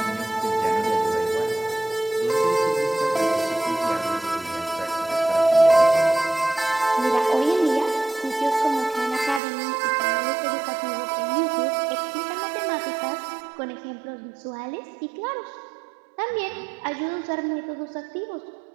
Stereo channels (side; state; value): left; drops out; at 9.4 s